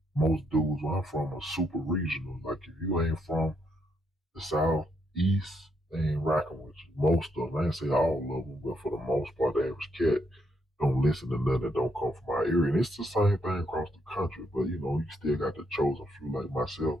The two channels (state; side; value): normal; both; correlation 0.76